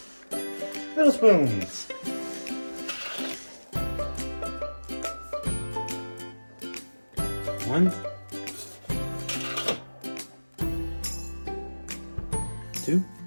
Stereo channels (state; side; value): inverted; both; correlation -1.00